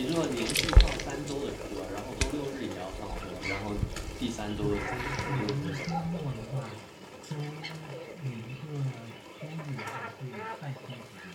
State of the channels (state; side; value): identical; both; correlation 1.00